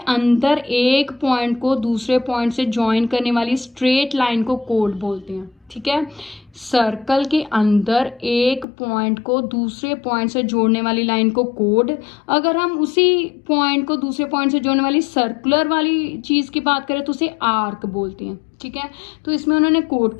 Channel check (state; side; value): drops out; right; at 8.7 s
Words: अंदर एक पॉइंट को दूसरे पॉइंट से ज्वाइन करने वाली स्ट्रेट लाइन को कोड बोलते हैं, ठीक है। सर्कल के अंदर एक पॉइंट को दूसरे पॉइंट से जोड़ने वाली लाइन को कोड, अगर हम उसी पॉइंट को दूसरे पॉइंट से जोड़ने वाली सर्कुलर वाली चीज की बात करें तो उसे आर्क बोलते हैं, ठीक है। तो इसमें उन्होंने कोड